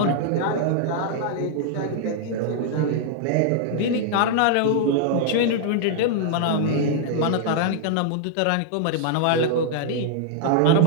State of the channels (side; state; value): both; different; correlation -0.01